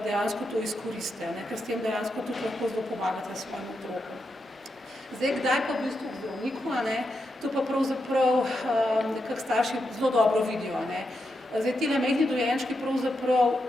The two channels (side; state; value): both; normal; correlation 0.85